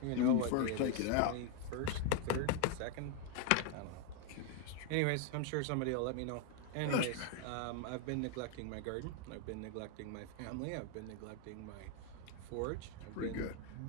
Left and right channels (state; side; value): different; both; correlation 0.00